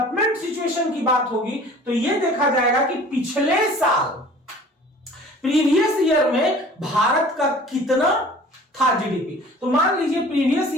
सिचुएशन की बात होगी तो ये देखा जाएगा कि पिछले साल प्रीवियस ईयर में भारत का कितना था जीडीपी। तो मान लीजिए प्रीवियस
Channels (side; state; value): both; normal; correlation 0.47